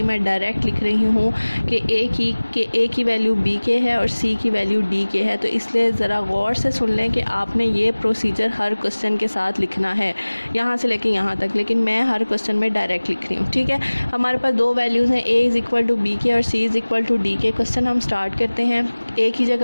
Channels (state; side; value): inverted; both; correlation -1.00